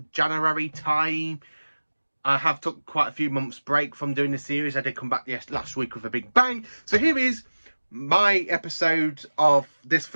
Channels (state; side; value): inverted; both; correlation -1.00